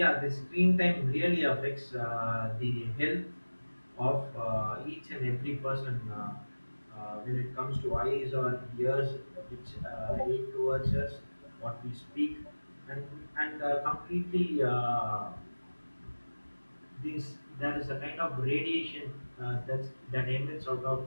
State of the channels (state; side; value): inverted; both; correlation -1.00